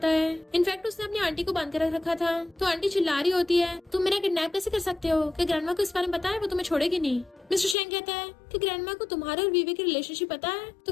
है। इनफैक्ट उसने अपनी आंटी को बांध कर रखा था। तो आंटी चिल्ला रही होती है तुम मेरा किडनैप कैसे कर सकते हो, कि ग्रैंडमा को इस बारे में पता है वो तुम्हें छोड़ेगी नहीं। मिस्टर शेंग कहता है कि ग्रैंडमा को तुम्हारे और वीवे की रिलेशनशिप पता है। तो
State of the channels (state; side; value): drops out; right; at 7.8 s